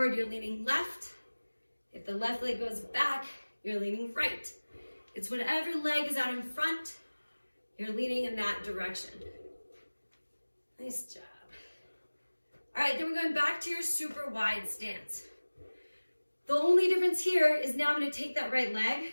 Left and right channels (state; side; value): inverted; both; correlation -1.00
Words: you're leaning left. If the left leg goes back, you're leaning right. It's whatever leg is out in front, you're leaning in that direction. Nice job. All right, then we're going back to your super wide stance. The only difference here is now I'm gonna take that right leg,